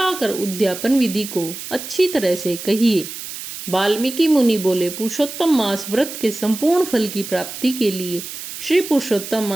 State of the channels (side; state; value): right; noise; hiss, 10 dB below the sound